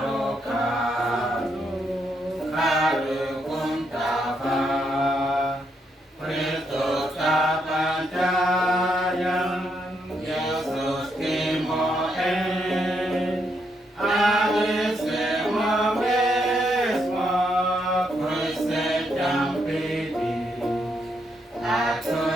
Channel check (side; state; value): both; normal; correlation 0.78